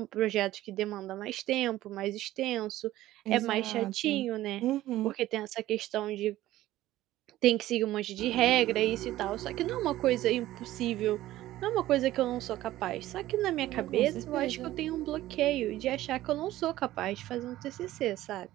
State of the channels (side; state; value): left; quieter; 15.1 dB